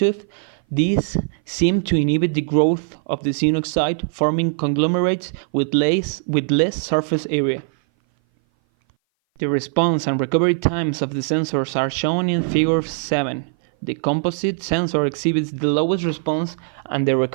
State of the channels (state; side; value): silent; left; 58 dB below the other